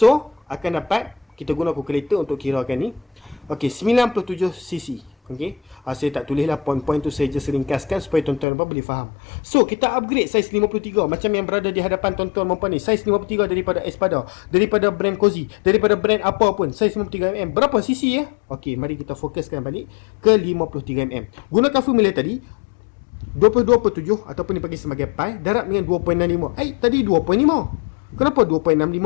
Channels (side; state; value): right; drops out; at 8.5 s